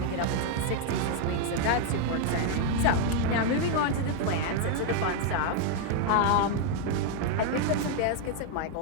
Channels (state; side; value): different; both; correlation 0.00